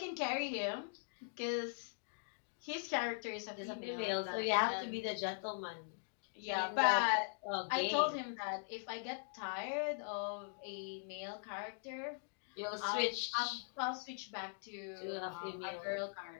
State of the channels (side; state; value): right; silent; digital silence